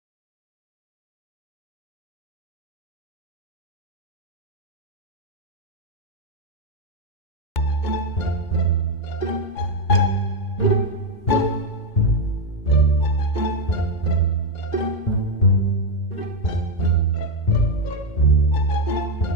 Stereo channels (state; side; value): late; right; 2.1 ms